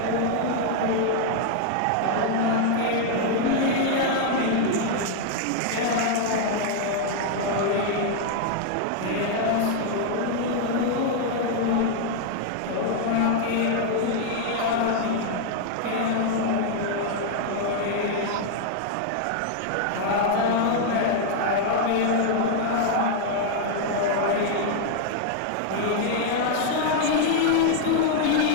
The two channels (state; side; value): different; both; correlation 0.00